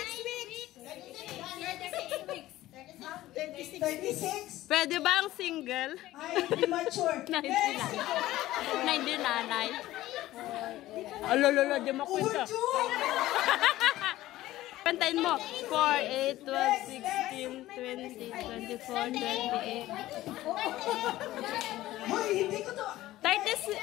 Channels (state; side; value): quieter; right; 15.7 dB